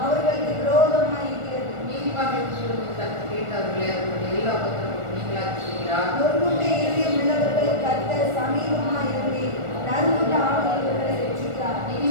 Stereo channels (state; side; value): late; left; 1.4 ms